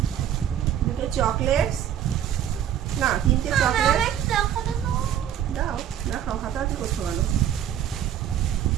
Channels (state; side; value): quieter; left; 10.1 dB